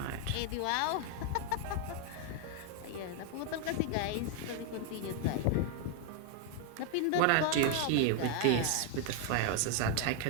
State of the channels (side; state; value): both; different; correlation 0.00